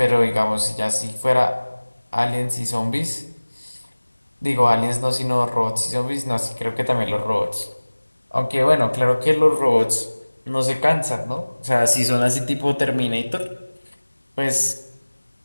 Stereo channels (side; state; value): both; inverted; correlation -1.00